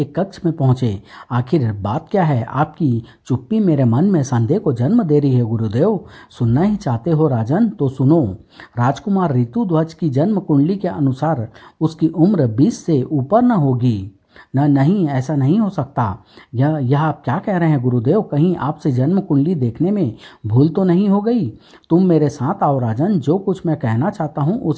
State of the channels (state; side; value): identical; both; correlation 1.00